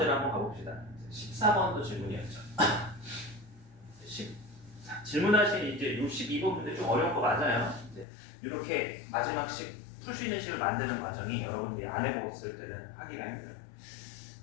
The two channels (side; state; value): right; drops out; at 8.1 s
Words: 한번 가봅시다. 14번도 질문이었죠. 질문하신 이제 62번 문제 좀 어려운 거 맞아요. 이제 이렇게 마지막 식 풀 수 있는 식을 만드는 과정이 여러분들이 안 해봤을 때는 하기가 힘들어요.